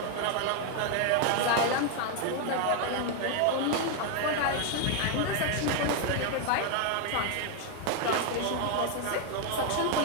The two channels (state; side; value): different; both; correlation 0.01